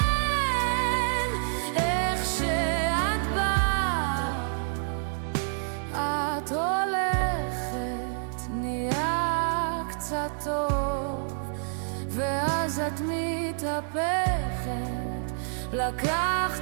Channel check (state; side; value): silent; left; 59 dB below the other